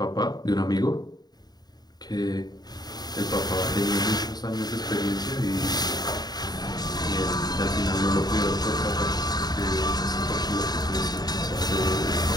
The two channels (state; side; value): late; right; 0.20 ms